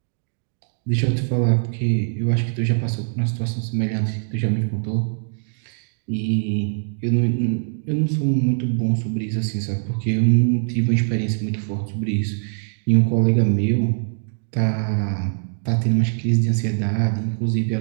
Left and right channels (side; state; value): left; silent; digital silence